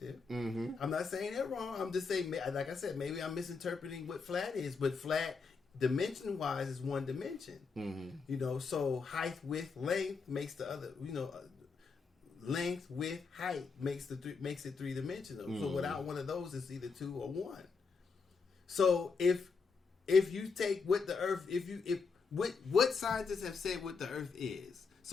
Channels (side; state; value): right; quieter; 5.0 dB